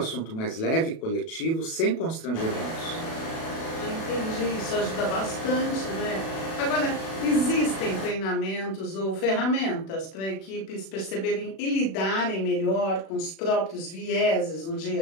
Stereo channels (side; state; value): right; late; 36 ms